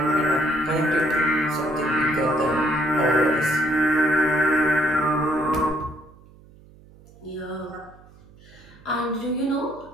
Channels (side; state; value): right; noise; hum, 24 dB below the sound